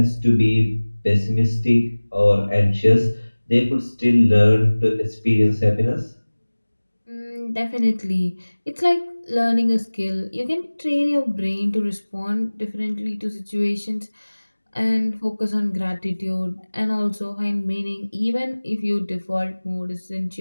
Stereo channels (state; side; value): inverted; both; correlation -1.00